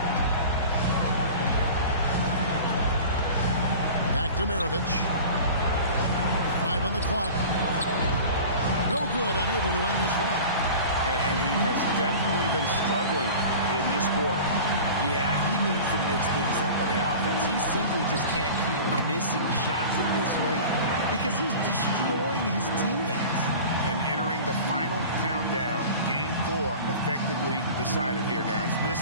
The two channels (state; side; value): inverted; both; correlation -0.38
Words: Back to Maravich. 5 on the clock. No good, unable to end this run. And he has definitely been struggling in this quarter. Yeah, he needs to mix things up on the offense. He simply just can't keep missing shots at this rate because he's destroying his teammates. And entering the final countdown, Game 4 effectively decided here, guys. This